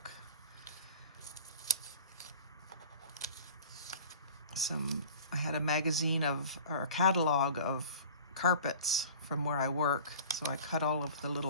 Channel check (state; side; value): inverted; both; correlation -0.41